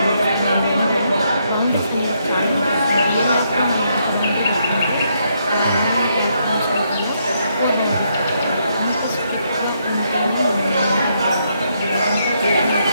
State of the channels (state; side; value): inverted; both; correlation -0.76